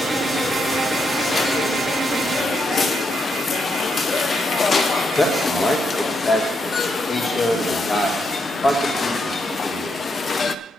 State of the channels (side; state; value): both; normal; correlation 0.80